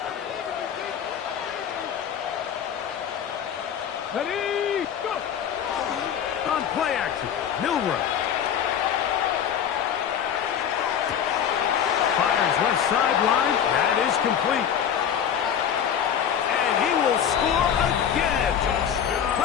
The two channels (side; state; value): right; quieter; 8.6 dB